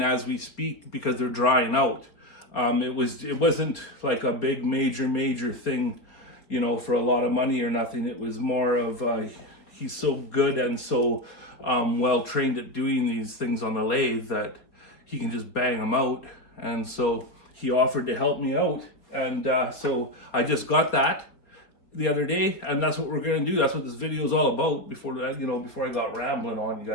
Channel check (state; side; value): late; right; 4.4 ms